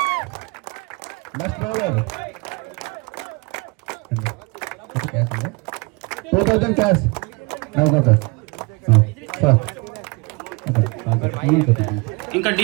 Best bowler 2000 cash. ఇంకా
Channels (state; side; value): quieter; left; 28.0 dB